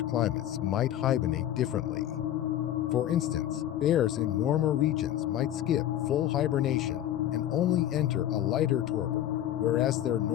climates might hibernate differently. For instance, bears in warmer regions might skip full hibernation and only enter a lighter torpor, whereas their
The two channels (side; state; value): right; quieter; 12.0 dB